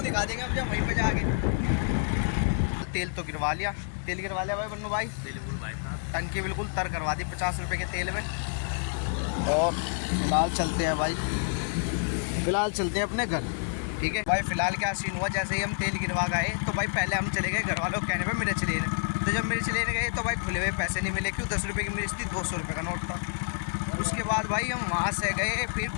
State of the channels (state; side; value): silent; right; digital silence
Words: दिखा देंगे अब जब वहीं पे जाके। तेल तो गिरवा लिया, तेल गिरवा लिया भाई बन्नू भाई। टंकी बिल्कुल तर करवा दी 50 रुपये के तेल में। और फिलहाल चलते हैं भाई, फिलहाल चलते हैं अपने घर, ठीक है भाई। फिलहाल क्या सीन हुआ, जैसे ही हम तेल गिरवा गए तो भाई पहले हम चले गए घर वालों के कहने पे मिर्च लेने। तो जब मिर्च लेने गए तो भाई खुले हुए पैसे नहीं मिले, क्यों 10 रुपये की मिर्च थी, 200 रुपये का नोट था। उसके बाद भाई हम वहाँ से गए फिर